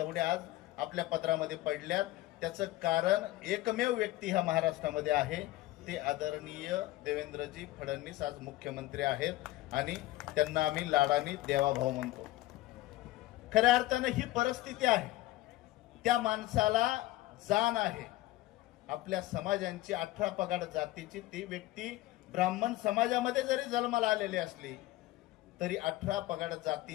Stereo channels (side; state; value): right; quieter; 17.0 dB